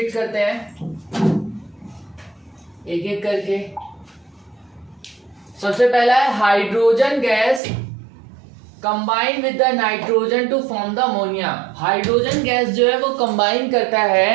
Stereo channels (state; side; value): drops out; left; at 7.6 s